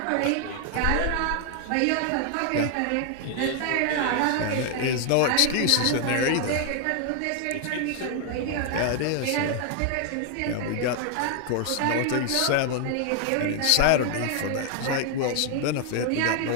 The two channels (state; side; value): different; both; correlation 0.00